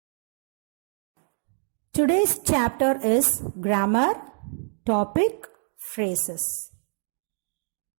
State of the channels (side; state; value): left; silent; 61 dB below the other